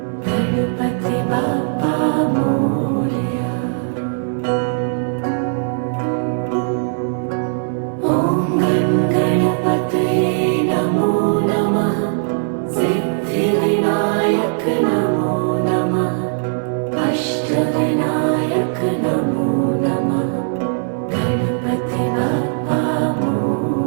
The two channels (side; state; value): left; silent; 67 dB below the other